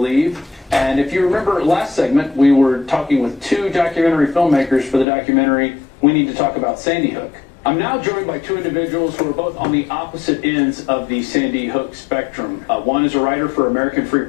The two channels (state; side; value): drops out; right; at 5.1 s